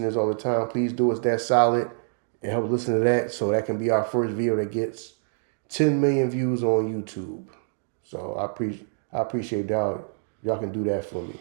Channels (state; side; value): silent; left; digital silence